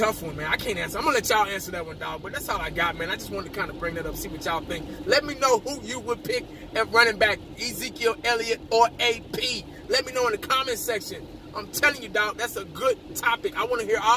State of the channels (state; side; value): identical; both; correlation 1.00